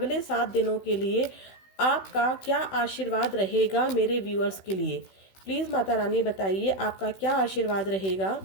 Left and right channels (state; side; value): late; right; 16 ms